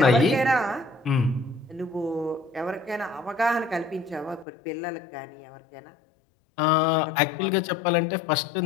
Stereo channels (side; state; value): right; drops out; at 4.5 s